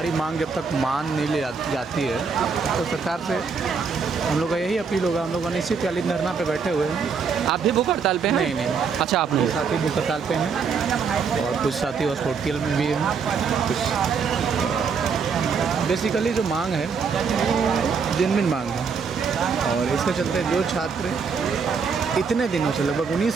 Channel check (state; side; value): quieter; left; 5.6 dB